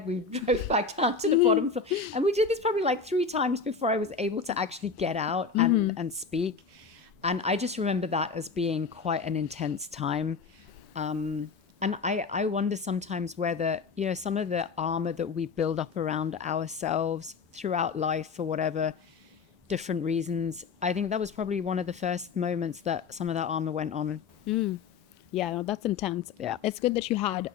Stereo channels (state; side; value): quieter; right; 5.3 dB